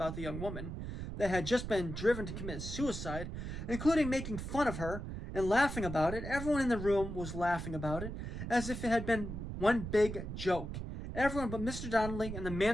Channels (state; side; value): noise; right; rumble, 6 dB below the sound